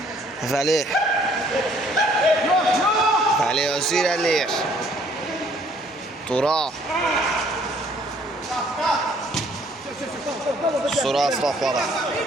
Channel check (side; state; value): both; normal; correlation 0.61